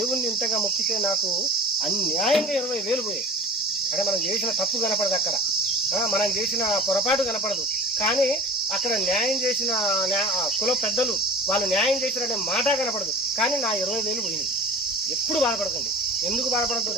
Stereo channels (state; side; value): normal; both; correlation 0.37